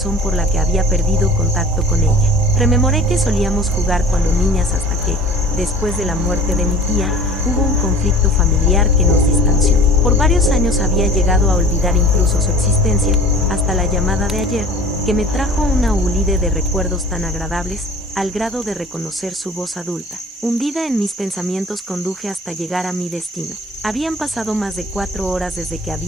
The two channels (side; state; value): both; normal; correlation 0.44